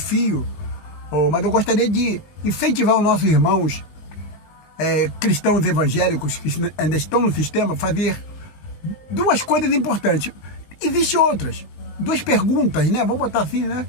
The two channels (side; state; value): right; late; 19 ms